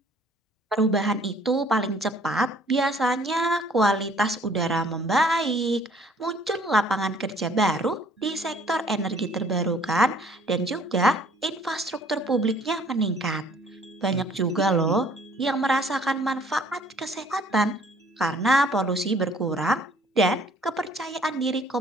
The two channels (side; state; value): both; normal; correlation 0.58